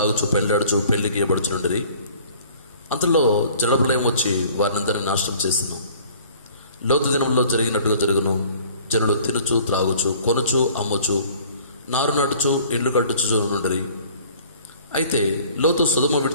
పెళ్ళాడుచు పెళ్లికి ఇవ్వబడుచుండిరి. అంతలో జలప్రలయం వచ్చి వారినందరినీ నాశనం చేసిన. లోతు దినంలో జరిగినట్టుగా జరుగును. జనులు తినుచు త్రాగుచు కొనుచు అమ్ముచు నారు నాటుచు ఇండ్లు కట్టుచు నుండిరి. అయితే లోతు సొదొమ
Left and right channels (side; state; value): both; inverted; correlation -0.52